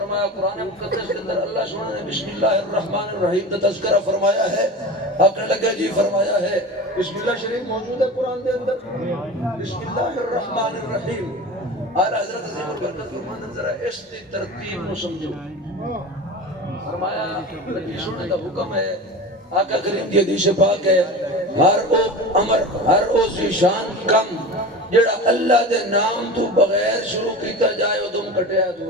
قرآن مقدس کے اندر اللہ سبحانہ نے بسم اللہ الرحمن الرحیم کا تذکرہ فرمایا ہے. آپ نے لگا جی فرمایا ہے بسم اللہ شریف موجود ہے قرآن دے اندر بسم اللہ الرحمن الرحیم. اعلیٰ حضرت عظیم البرکت فرماتے ہیں ذرا اس دی ترتیب نو سمجھو. فرمایا نبی سننے کا حکم ہے آقا کریم کی حدیث پاک ہے ہر او امر ہر او ذیشان کم جڑا اللہ دے نام تو بغیر شروع کیتا جائے او تم کٹیا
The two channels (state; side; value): normal; both; correlation 0.31